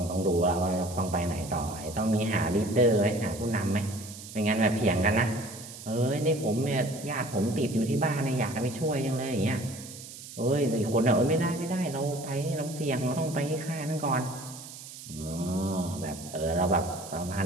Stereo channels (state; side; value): noise; right; hiss, 14 dB below the sound